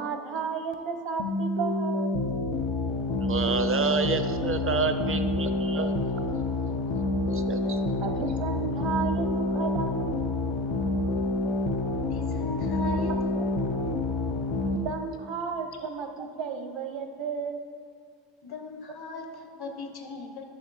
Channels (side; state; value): both; normal; correlation 0.32